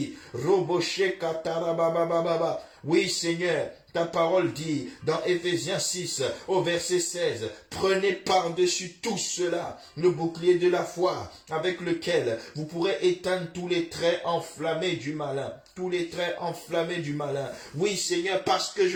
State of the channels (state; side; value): identical; both; correlation 1.00